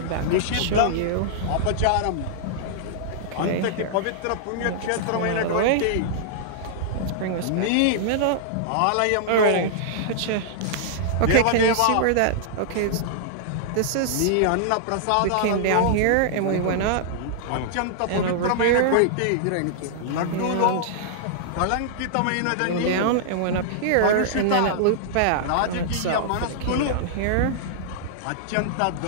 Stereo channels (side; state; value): both; different; correlation -0.01